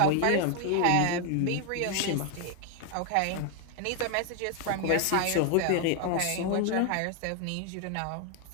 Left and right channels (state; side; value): different; both; correlation 0.01